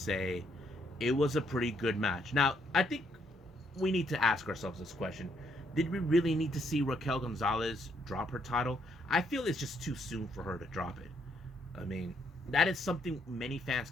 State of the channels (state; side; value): normal; both; correlation 0.72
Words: it was a pretty good match. Now, I think we need to ask ourselves this question. Did we really need to see Raquel Gonzalez drop her title? I feel it's just too soon for her to drop it. I mean, that is something many fans